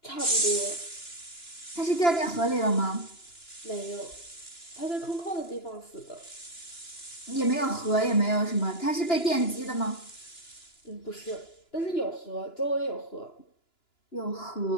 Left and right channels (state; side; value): late; right; 2.9 ms